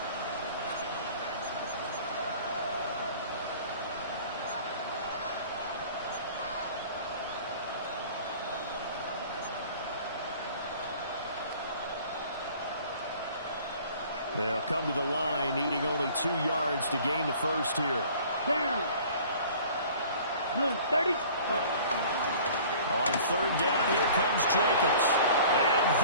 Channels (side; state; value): both; inverted; correlation -0.48